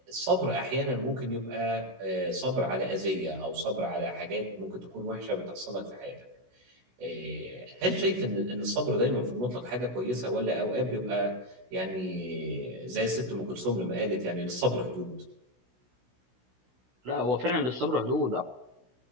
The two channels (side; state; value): left; late; 16 ms